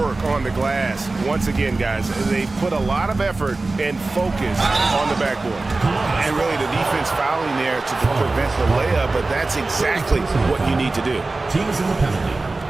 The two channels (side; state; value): left; quieter; 3.3 dB